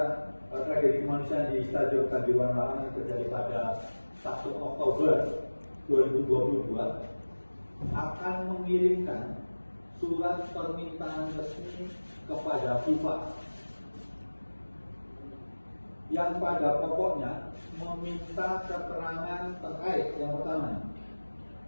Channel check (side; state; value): both; inverted; correlation -1.00